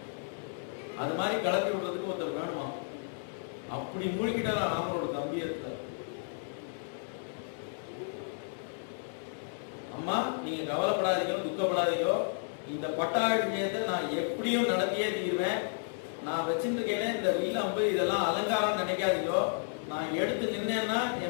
அது மாதிரி கலப்பி விடுறதுக்கு ஒருத்தர் வேணுமா? அப்படி மூழ்கிட்டாரா ராமரோட கம்பீரத்துல. அம்மா நீங்க கவலைப்படாதீங்க, துக்கப்படாதீங்க, இந்த பட்டாபிஷேகத்தை நான் எப்படியும் நடத்தியே தீர்வேன். நான் வச்சுருக்கேன் இந்த வில் அம்பு இதெல்லாம் அலங்காரம் நினைக்காதீங்க. நான் எடுத்து நின்னேன்னா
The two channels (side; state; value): right; silent; 56 dB below the other